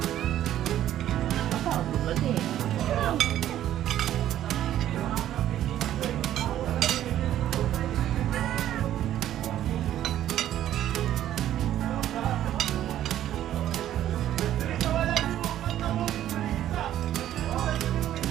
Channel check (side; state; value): left; quieter; 12.1 dB